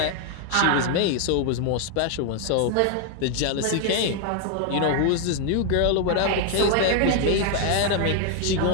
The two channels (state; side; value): different; both; correlation 0.00